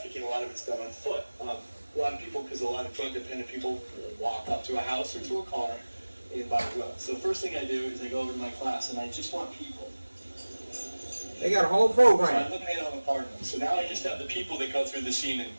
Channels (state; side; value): inverted; both; correlation -1.00